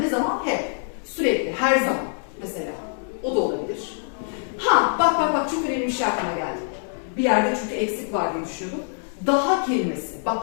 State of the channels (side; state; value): right; silent; 62 dB below the other